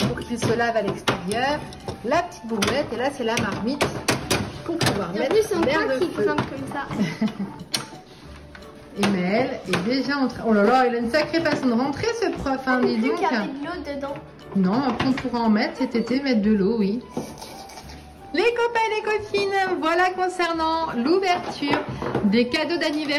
qu'il se lave à l'extérieur, la petite bouillette, et là c'est la marmite pour pouvoir mettre l'air de feu. Comme ça. Et Maëlle est déjà en train... Oh là là, il a une sacrée façon de rentrer ce prof, hein, dis donc. Il y avait de l'eau dedans. Non, après on pourra en mettre cet été, mettre de l'eau, oui. Les copains et les copines, voilà concernant l'ouverture des cadeaux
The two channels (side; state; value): both; identical; correlation 1.00